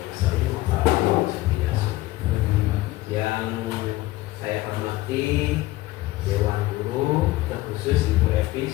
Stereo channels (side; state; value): right; quieter; 17.8 dB